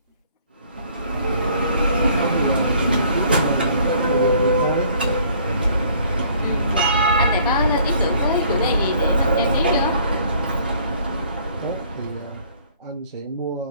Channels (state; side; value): inverted; both; correlation -0.58